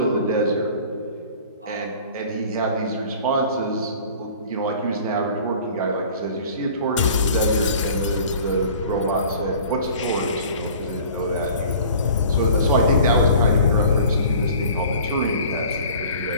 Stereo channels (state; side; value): inverted; both; correlation -0.46